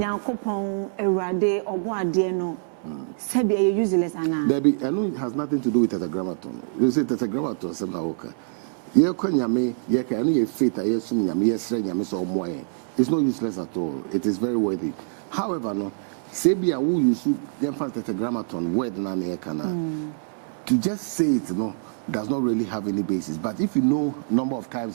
Erade, Oboade no. Sebi are useless ana. Debbie, I know it has nothing to do with tetragrammaton. You say tetragrammaton sem na oka. Ye kwa Nyame, ye ka anu ye faith a yesum Nyame yesre Nyame so omoye. It's not useless at all. It is very worthy. However, no, sebi a wu use dem fa tetragrammaton word na na ye kana. To just say it does not really have any basis. But if you know number of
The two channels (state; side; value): silent; left; 62 dB below the other